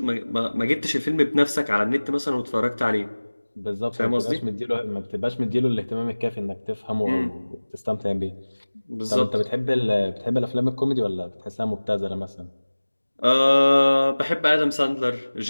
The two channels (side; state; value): both; inverted; correlation -1.00